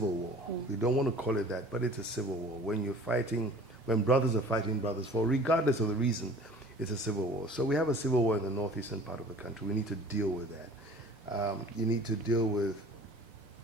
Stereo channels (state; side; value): normal; both; correlation 0.47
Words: war. We don't want to call it that, but it's a civil war. When you're fighting, when brothers are fighting brothers for, regardless of the reason, it's a civil war. So we have a civil war in the northeastern part of the country. We need to deal with that. You need to deal with